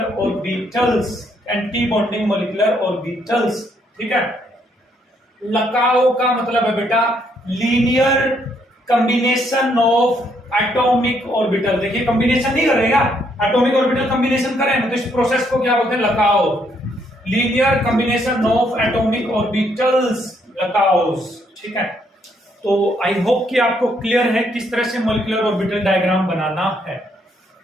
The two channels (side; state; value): both; normal; correlation 0.72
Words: orbitals, anti bonding molecular orbitals, ठीक है। लकाओ का मतलब है बेटा linear combination of atomic orbital. देखिए कॉम्बिनेशन नहीं करेगा, एटॉमिक ऑर्बिटल कॉम्बिनेशन करें तो इस प्रोसेस को क्या बोलते हैं, LCAO, linear combination of atomic orbitals, LCAOs, ठीक है। तो आई होप कि आपको क्लियर है किस तरह से मॉलिक्यूलर ऑर्बिटल डायग्राम बनाना है।